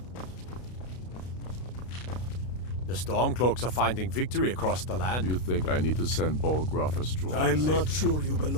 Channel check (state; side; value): late; right; 32 ms